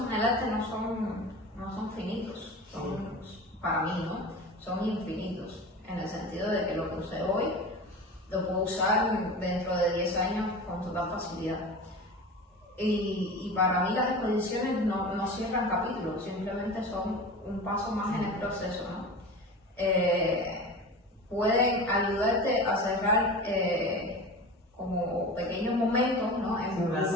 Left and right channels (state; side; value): normal; both; correlation 0.32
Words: en el arte no son finitos, para mí, ¿no? Son infinitos, en el sentido de que lo que usé hoy lo puedo usar dentro de 10 años con total facilidad. Y para mí las exposiciones no cierran capítulos, simplemente son un paso más en el proceso, ¿no? Pueden ayudarte a cerrar como pequeños momentos, ¿no? En un